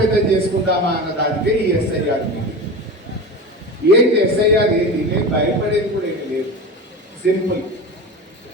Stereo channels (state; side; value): normal; both; correlation 0.28